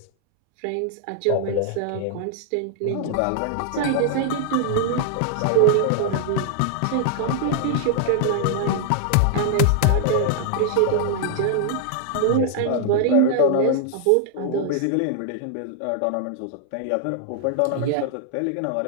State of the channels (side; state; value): both; different; correlation -0.01